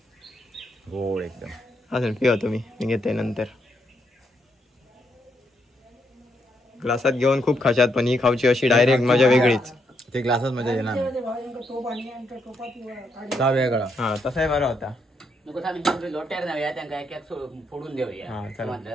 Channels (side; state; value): both; normal; correlation 0.78